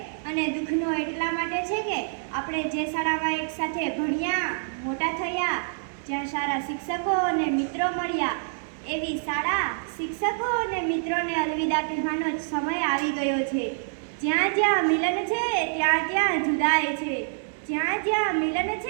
અને દુઃખનો એટલા માટે છે કે આપણે જે શાળામાં એક સાથે ભણ્યા, મોટા થયા, જ્યાં સારા શિક્ષકો અને મિત્રો મળ્યા, એવી શાળા, શિક્ષકો અને મિત્રોને અલવિદા કહેવાનો જ સમય આવી ગયો છે. જ્યાં જ્યાં મિલન છે ત્યાં ત્યાં જુદાઈ છે. જ્યાં જ્યાં મિલન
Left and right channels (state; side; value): silent; left; digital silence